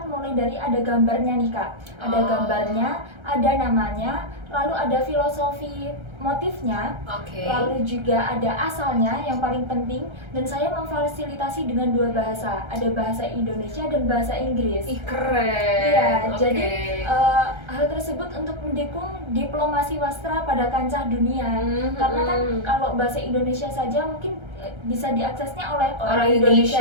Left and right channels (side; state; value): left; late; 1.3 ms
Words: mulai dari ada gambarnya nih Kak. Ada gambarnya, ada namanya, lalu ada filosofi motifnya, lalu juga ada asalnya yang paling penting, dan saya memfasilitasi dengan 2 bahasa, ada bahasa Indonesia dan bahasa Inggris. Ih, keren. Iya, jadi hal tersebut untuk mendukung diplomasi wastra pada kancah dunia. Karena kan kalau bahasa Indonesia saja mungkin bisa diaksesnya oleh orang Indonesia